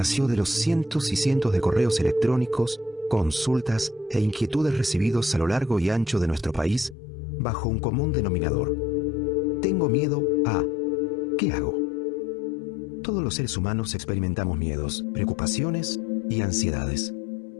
de los cientos y cientos de correos electrónicos, consultas e inquietudes recibidos a lo largo y ancho de nuestro país bajo un común denominador. Tengo miedo a... ¿Qué hago? Todos los seres humanos experimentamos miedos, preocupaciones y ansiedades.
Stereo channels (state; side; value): drops out; right; at 7.0 s